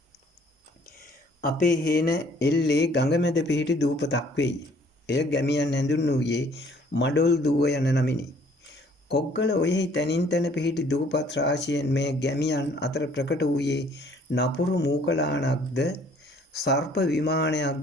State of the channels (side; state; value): both; normal; correlation 0.59